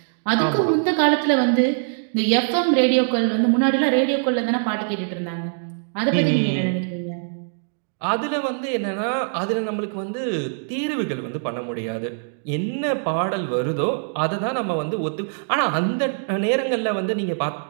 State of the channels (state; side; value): silent; left; digital silence